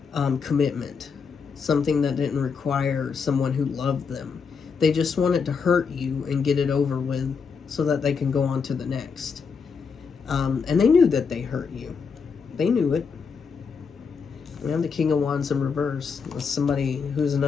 commitment. Something that didn't require someone who loved them. They just wanted to hurt you and get it over with so that they can go on to the next. And they knew that they hurt you. They knew it. We have the King of Wands in reverse. That's somebody who's an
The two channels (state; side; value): quieter; right; 5.6 dB